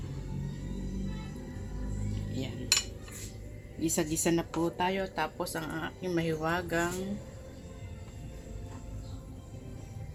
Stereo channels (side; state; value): both; identical; correlation 1.00